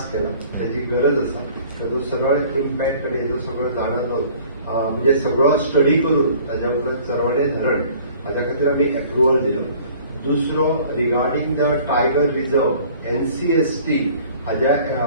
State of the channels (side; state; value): both; inverted; correlation -0.52